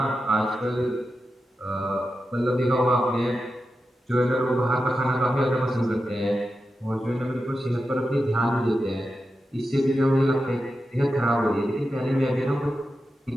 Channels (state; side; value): normal; both; correlation 0.90